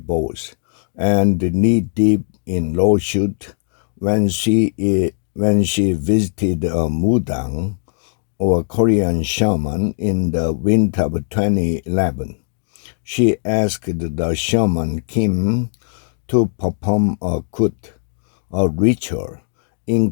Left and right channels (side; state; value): right; silent; digital silence